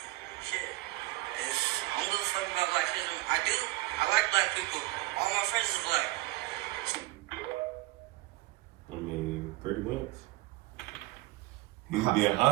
Shit. I don't give a fuck about blackism. I do. I like black people. All my friends is black. I mean, pretty much. He's being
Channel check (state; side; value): quieter; left; 18.8 dB